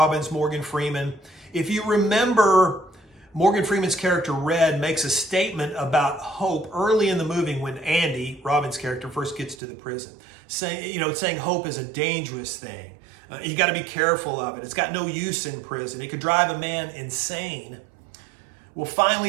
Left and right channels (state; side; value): drops out; left; at 9.6 s